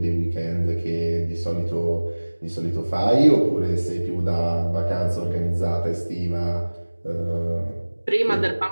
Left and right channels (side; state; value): both; inverted; correlation -1.00